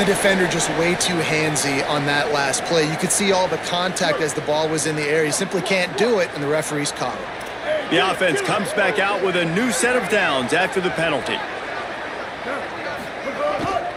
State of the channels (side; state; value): both; identical; correlation 1.00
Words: defender just way too handsy on that last play. You could see all the contact as the ball was in the air. He simply can't do it, and the referees caught it. The offense comes back out with a new set of downs after the penalty.